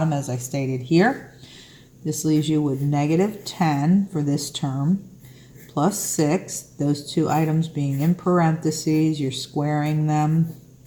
as I stated here. This leaves you with negative 10 for this term, plus 6. Those 2 items being in parentheses, you're squaring them.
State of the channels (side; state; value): both; identical; correlation 1.00